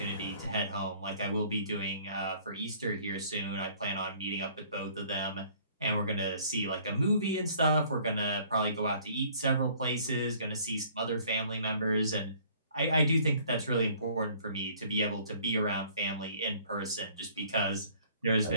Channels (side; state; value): both; inverted; correlation -0.56